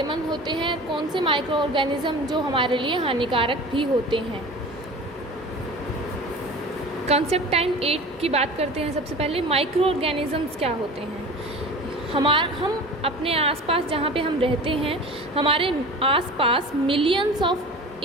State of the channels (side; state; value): both; normal; correlation 0.37